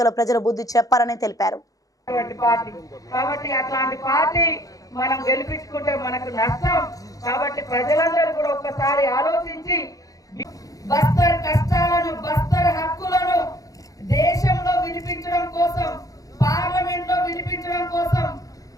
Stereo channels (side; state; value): right; late; 0.17 ms